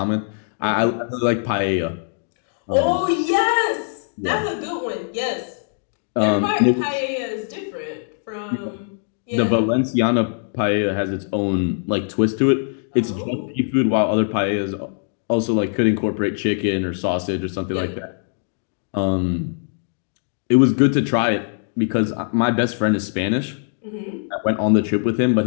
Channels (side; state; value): right; silent; digital silence